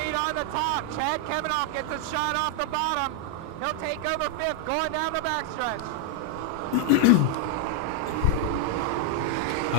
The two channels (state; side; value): different; both; correlation 0.00